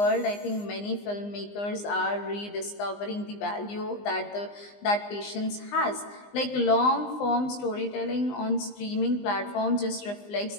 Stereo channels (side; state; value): right; late; 20 ms